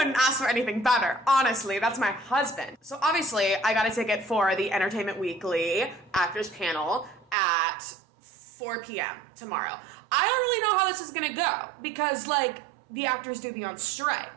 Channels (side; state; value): left; drops out; at 7.4 s